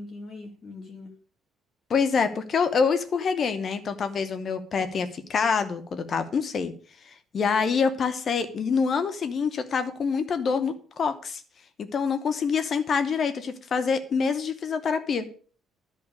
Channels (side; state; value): right; quieter; 5.3 dB